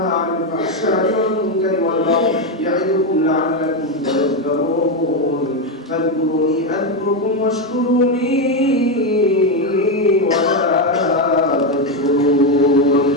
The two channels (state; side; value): normal; both; correlation 0.08